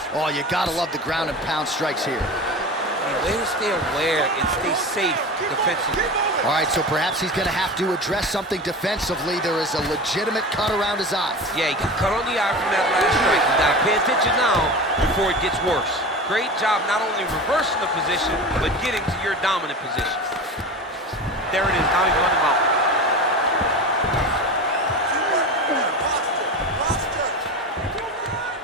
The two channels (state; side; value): normal; both; correlation 0.29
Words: Oh, you gotta love the ground and pound strikes here. Way to stay aware and stay safe defensively. All right, so perhaps he's gonna have to address something defensively. There is a legitimate cut around his eye. Yeah, he got cut on the eye from that last strike. You gotta pay attention now before it gets worse. Great job not only reversing the position, but getting to your dominant position. There it is, now he's running him out.